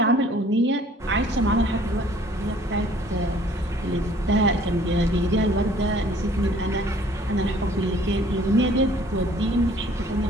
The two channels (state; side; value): normal; both; correlation 0.55